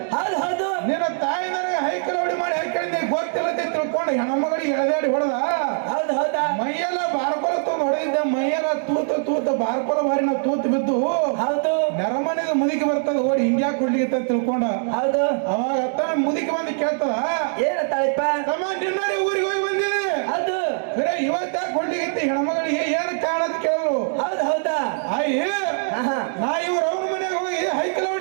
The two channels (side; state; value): left; silent; digital silence